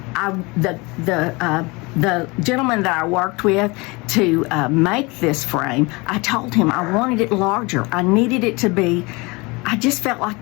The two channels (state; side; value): quieter; right; 25.8 dB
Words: The gentleman that I worked with to make this frame, I told him I wanted it larger. I needed it to be, I just felt